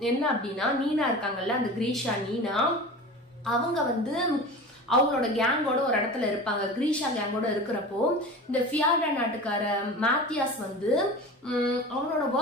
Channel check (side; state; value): both; normal; correlation 0.33